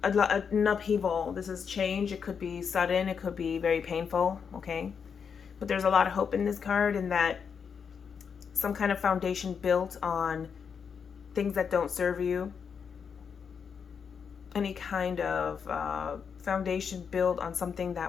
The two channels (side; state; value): right; quieter; 6.6 dB